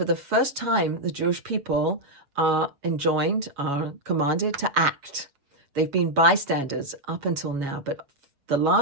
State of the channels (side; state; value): left; late; 7.2 ms